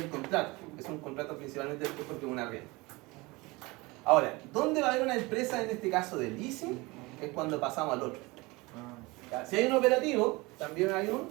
contrato, es un contrato principalmente porque es una arriendo. Ahora, ¿dónde va a haber una empresa en este caso de leasing? Es cuando pasamos al otro. ¿Ya? Si hay un operativo, también hay un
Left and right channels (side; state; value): left; quieter; 23.5 dB